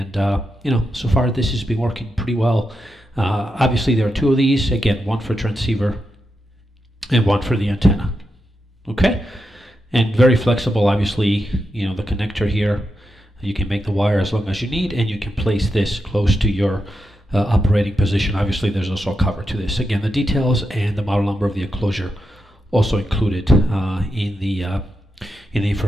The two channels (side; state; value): both; normal; correlation 0.86